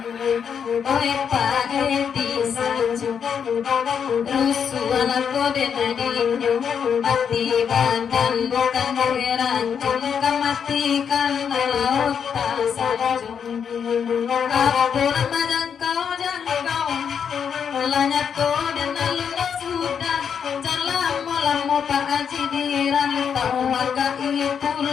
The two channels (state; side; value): quieter; right; 7.3 dB